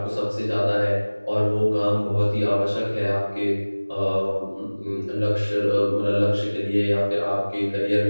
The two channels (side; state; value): both; inverted; correlation -1.00